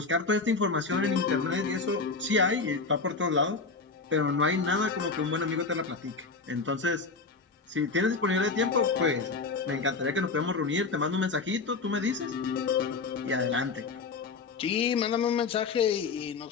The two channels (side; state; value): right; quieter; 4.3 dB